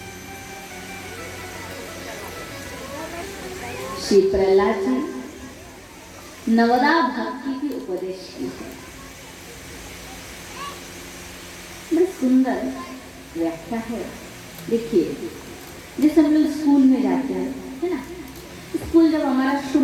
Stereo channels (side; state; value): both; identical; correlation 1.00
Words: श्री प्रहलाद जी नवदा भक्ति की उपदेश की है। बड़ी सुंदर व्याख्या है। देखिए, जैसे हम लोग स्कूल में जाते हैं, है ना, स्कूल जब हमारा